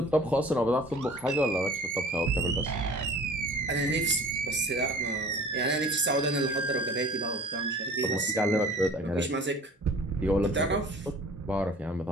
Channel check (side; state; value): both; normal; correlation 0.46